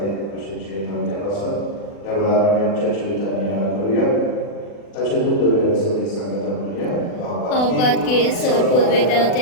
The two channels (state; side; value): late; right; 40 ms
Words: așa ce de pasă. Evaluarea mea ceea ce uitania căruia, tace nu dovește să ne sangătămânia, Apatke sorpul